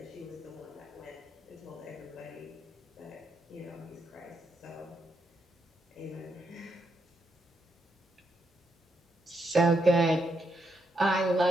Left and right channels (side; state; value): both; normal; correlation 0.80